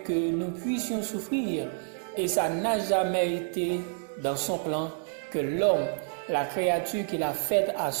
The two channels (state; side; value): silent; left; digital silence